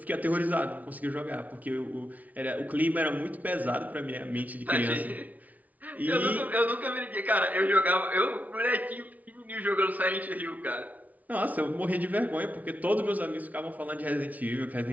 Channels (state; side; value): late; left; 0.074 ms